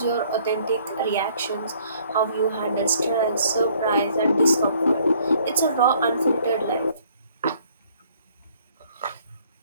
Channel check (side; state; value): both; inverted; correlation -0.61